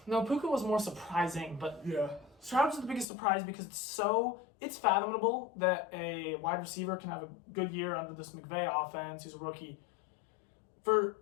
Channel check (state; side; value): drops out; right; at 3.1 s